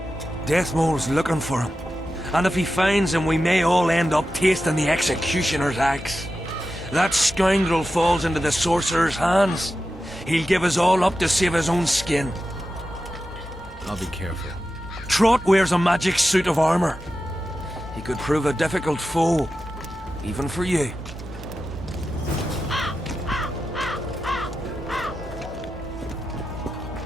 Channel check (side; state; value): both; normal; correlation 0.91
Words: Deathmole's looking for him. And if he finds him, we may all end up tasting the executioner's axe. That scoundrel falls into the sorcerer's hands. He'll give us all up to save his own skin. I'll be careful. Trott wears a magic suit of armor. He could prove a difficult foe, even for you.